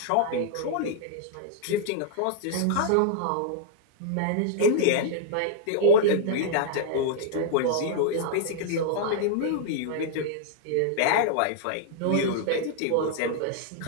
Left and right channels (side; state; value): both; different; correlation -0.01